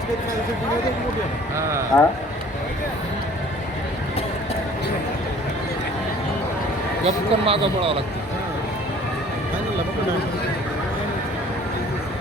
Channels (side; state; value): both; normal; correlation 0.52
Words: गपकन मागं पडावं लागतं.